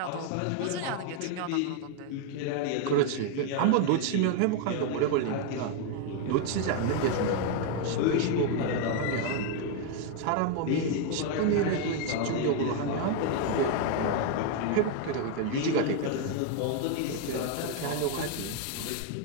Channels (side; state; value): both; different; correlation 0.01